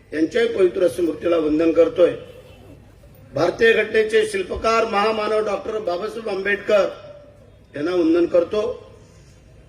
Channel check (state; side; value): identical; both; correlation 1.00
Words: यांच्याही पवित्र स्मृतीला वंदन करतोय। भारतीय घटनेचे शिल्पकार महामानव डॉक्टर बाबासाहेब आंबेडकर यांना वंदन करतो